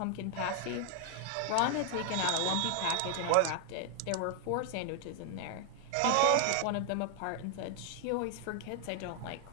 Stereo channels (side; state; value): both; different; correlation 0.00